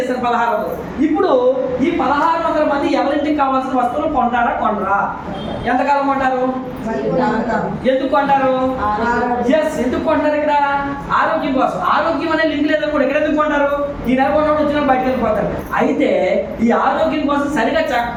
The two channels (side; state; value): both; identical; correlation 1.00